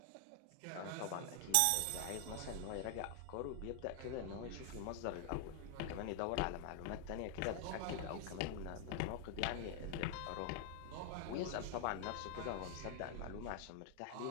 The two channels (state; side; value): different; both; correlation 0.00